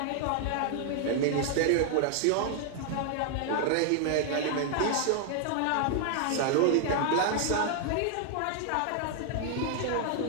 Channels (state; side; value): different; both; correlation 0.00